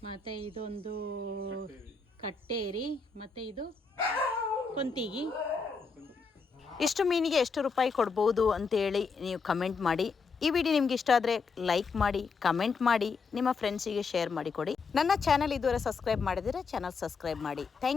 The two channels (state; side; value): quieter; right; 4.8 dB